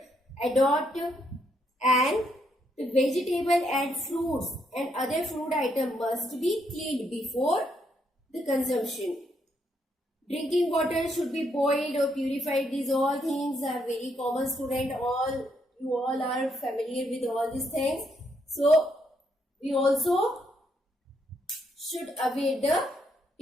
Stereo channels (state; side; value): normal; both; correlation 0.75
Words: adopt, and the vegetable and fruits and other food items must be cleaned before the consumption. Drinking water should be boiled or purified. These all things are very common, student. You all are familiar with all these things. So we also should aware the